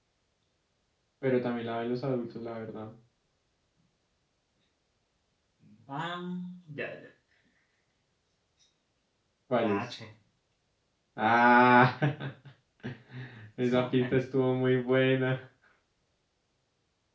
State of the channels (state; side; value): identical; both; correlation 1.00